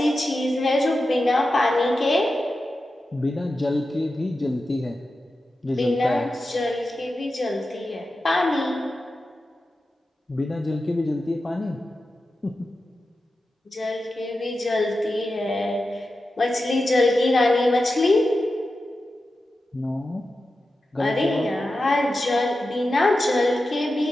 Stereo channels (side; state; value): both; normal; correlation 0.92